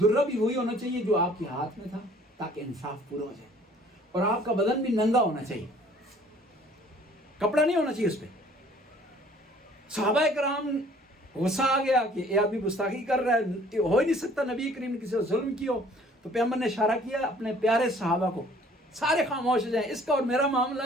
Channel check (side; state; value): both; normal; correlation 0.55